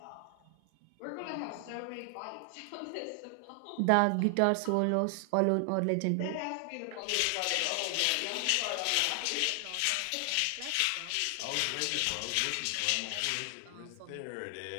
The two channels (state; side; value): different; both; correlation 0.00